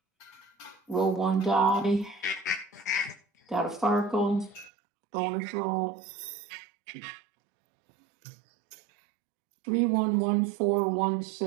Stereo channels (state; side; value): drops out; left; at 4.7 s